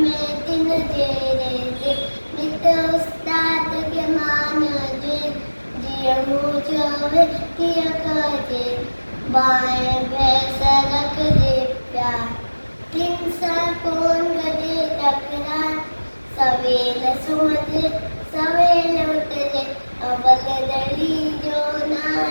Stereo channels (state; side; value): inverted; both; correlation -1.00